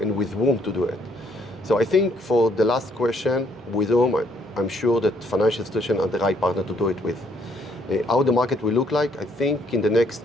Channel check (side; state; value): both; normal; correlation 0.68